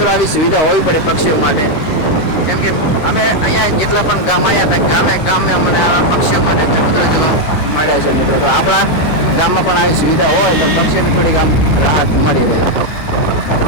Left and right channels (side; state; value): right; late; 13 ms